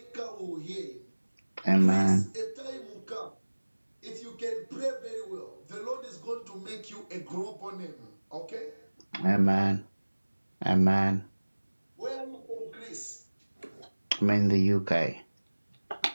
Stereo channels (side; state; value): both; inverted; correlation -1.00